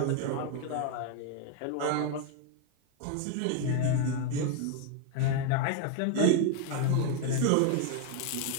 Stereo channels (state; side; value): different; both; correlation 0.00